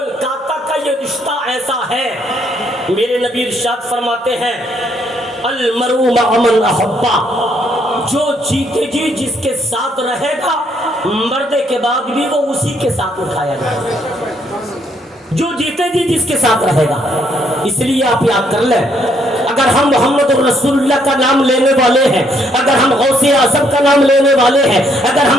کا یہ رشتہ ایسا ہے، میرے نبی ارشاد فرماتے ہیں المرء مع من احبہ، جو جیتے جی جس کے ساتھ رہے گا مردے کے بعد بھی وہ اسی کے ساتھ اٹھایا جائے گا، جو جیتے جی جس کے ساتھ رہے گا۔ اس لیے آپ یاد کر لیں، اگر ہم محمد رسول اللہ کا نام لینے والے ہیں، اگر ہم غوث اعظم کا نام لینے والے ہیں، اگر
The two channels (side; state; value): both; normal; correlation 0.70